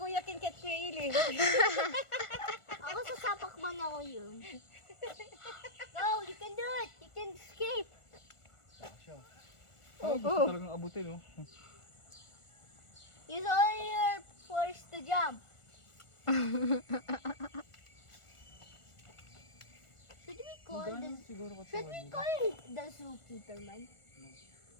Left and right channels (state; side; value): late; right; 1.4 ms